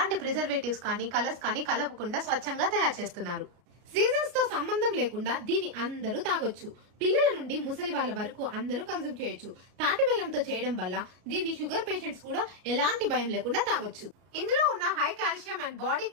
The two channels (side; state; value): left; late; 33 ms